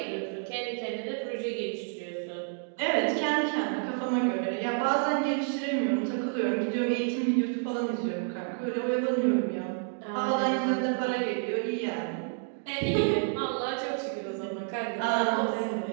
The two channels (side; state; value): left; silent; 58 dB below the other